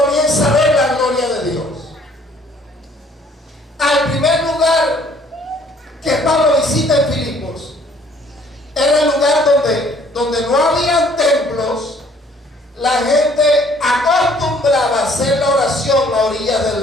comienza a ver la gloria de Dios. Al primer lugar que Pablo visita en Filipos era el lugar donde no habían templos. La gente acostumbraba a hacer la oración a orillas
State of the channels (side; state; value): both; normal; correlation 0.59